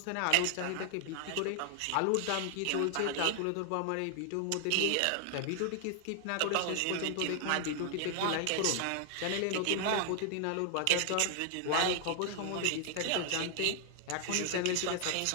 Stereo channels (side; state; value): both; different; correlation 0.00